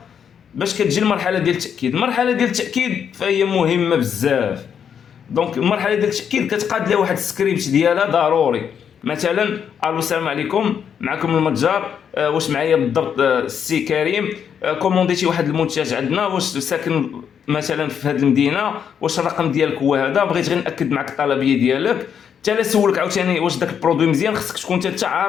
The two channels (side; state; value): right; quieter; 7.9 dB